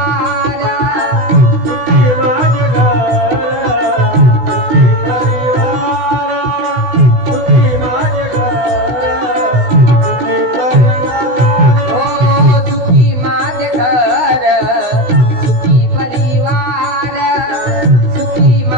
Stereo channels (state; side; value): late; left; 16 ms